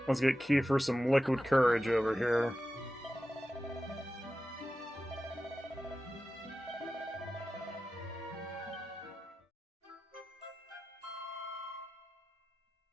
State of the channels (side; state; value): both; normal; correlation 0.94